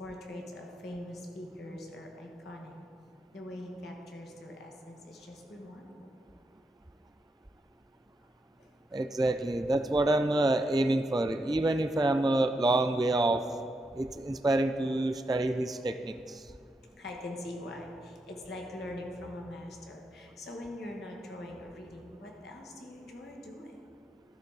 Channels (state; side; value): normal; both; correlation 0.82